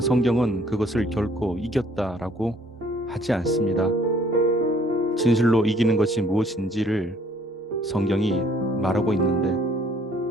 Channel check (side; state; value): both; normal; correlation 0.60